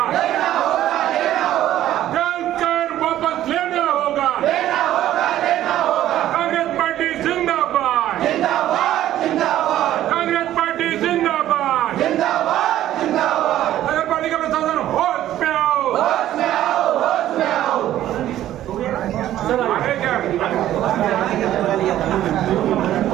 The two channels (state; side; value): quieter; left; 12.9 dB